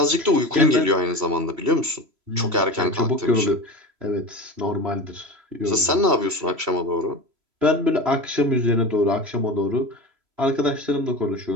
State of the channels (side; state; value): left; late; 3.0 ms